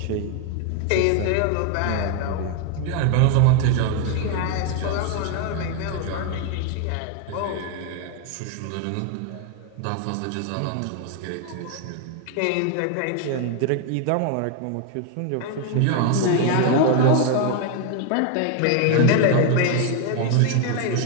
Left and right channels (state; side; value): different; both; correlation 0.01